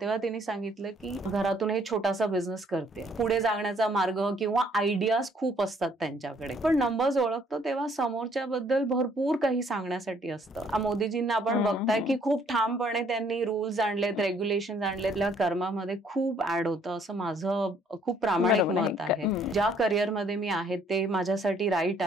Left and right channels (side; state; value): both; normal; correlation 0.64